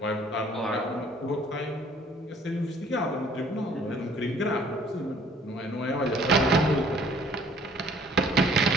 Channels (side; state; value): both; normal; correlation 0.57